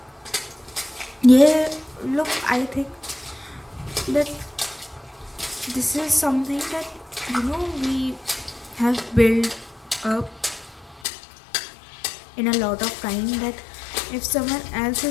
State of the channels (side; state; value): right; drops out; at 11.0 s